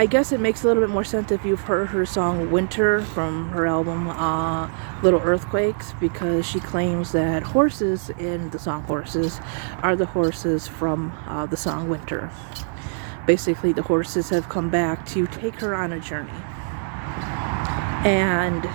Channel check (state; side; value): silent; left; digital silence